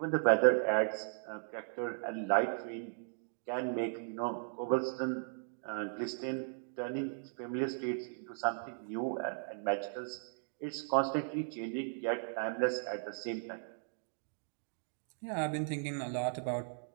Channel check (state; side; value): silent; left; digital silence